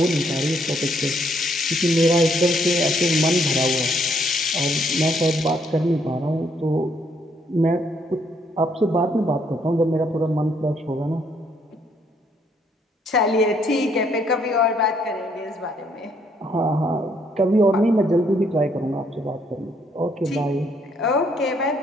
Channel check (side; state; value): both; normal; correlation 0.69